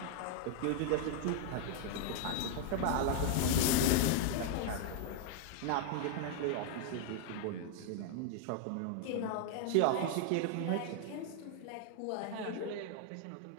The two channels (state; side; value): different; both; correlation 0.00